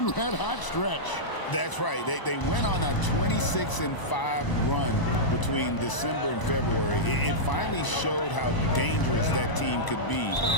red-hot stretch. That's right. They went on a 26-5 run between December and February. It finally showed how dangerous that team could be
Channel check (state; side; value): late; right; 1.0 ms